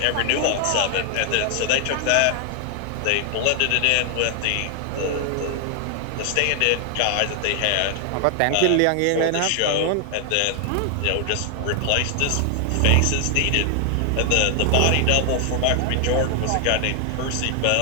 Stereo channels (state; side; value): different; both; correlation 0.00